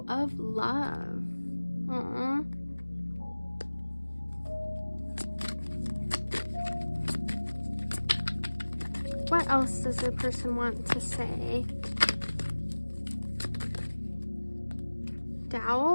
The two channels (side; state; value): both; inverted; correlation -1.00